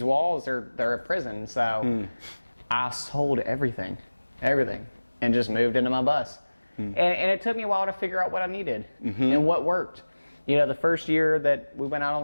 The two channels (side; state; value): both; inverted; correlation -1.00